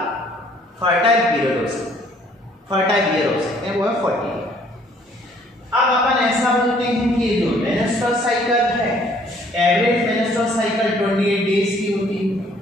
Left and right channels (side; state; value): both; normal; correlation 0.61